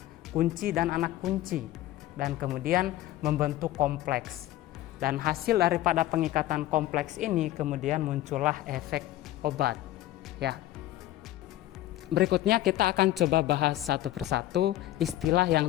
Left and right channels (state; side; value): quieter; right; 14.6 dB